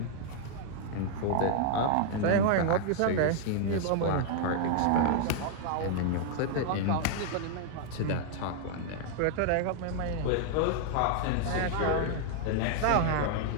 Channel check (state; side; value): different; both; correlation -0.01